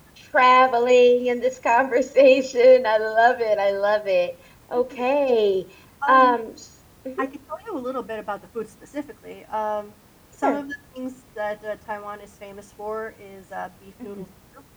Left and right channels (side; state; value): both; identical; correlation 1.00